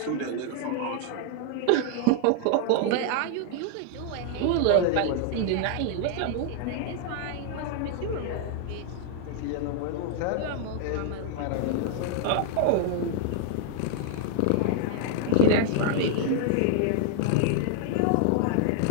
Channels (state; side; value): different; both; correlation 0.00